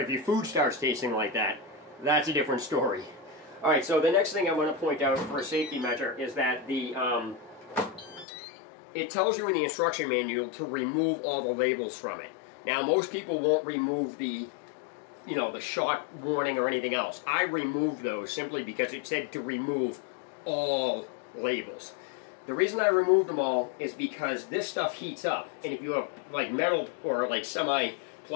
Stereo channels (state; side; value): drops out; right; at 8.2 s